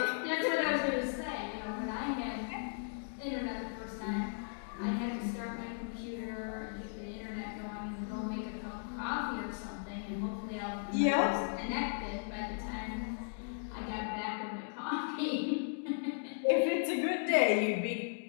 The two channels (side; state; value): right; silent; digital silence